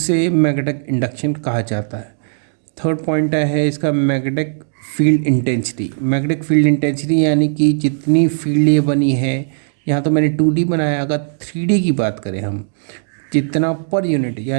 मैग्नेटिक इंडक्शन कहा जाता है। थर्ड पॉइंट है इसका magnetic field intensity. Magnetic field intensity यानी कि जितनी फील्ड ये बनी है, यहाँ तो मैंने 2D बनाया, अगर 3D की बात करें हम, जितना पर यूनिट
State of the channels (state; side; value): silent; left; digital silence